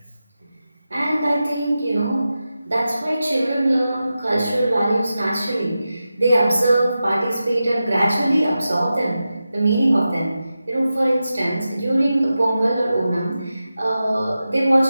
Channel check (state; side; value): inverted; both; correlation -0.92